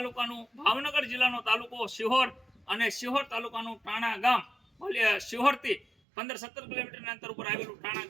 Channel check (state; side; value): drops out; left; at 5.9 s